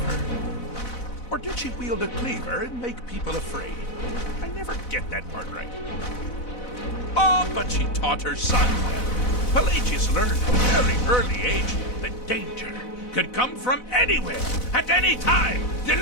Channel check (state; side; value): late; right; 4.0 ms